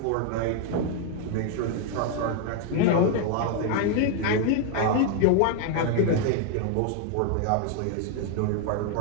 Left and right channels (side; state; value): both; different; correlation 0.00